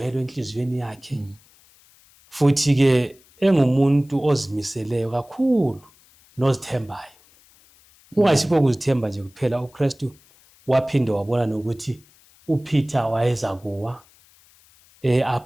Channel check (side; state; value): left; noise; hiss, 29 dB below the sound